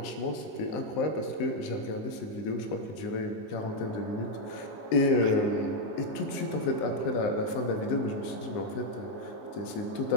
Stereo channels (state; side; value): late; right; 19 ms